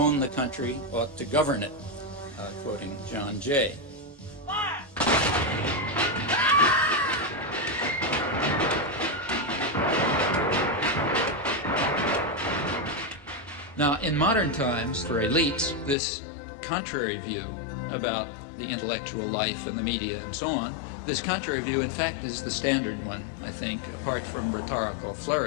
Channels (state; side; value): drops out; right; at 16.0 s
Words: the country ought to govern it, quoting John Jay. Now, in modern times, for elites, this contrary view about the intellectual life and the media and so on, this contrary view, in fact, is the standard one, I think, apart from rhetorical